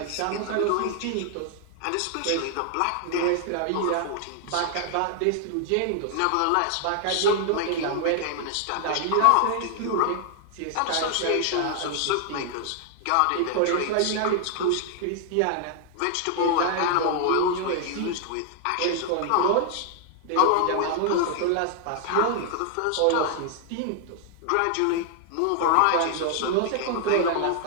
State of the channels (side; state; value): both; different; correlation 0.00